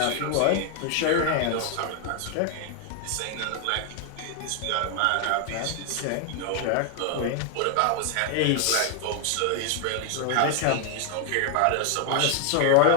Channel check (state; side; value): different; both; correlation 0.00